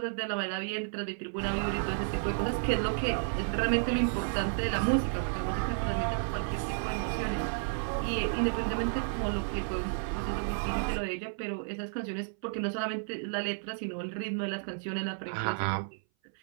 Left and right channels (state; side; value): silent; left; 56 dB below the other